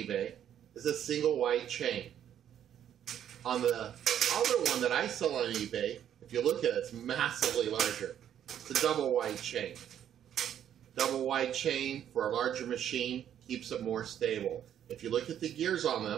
is a single wide chain. On the other one that I sell on eBay, if you look at it, it's massively larger. It's a double wide chain. Double wide chain for a larger machine keeps it more stable. If you look at the gears on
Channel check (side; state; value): left; quieter; 10.0 dB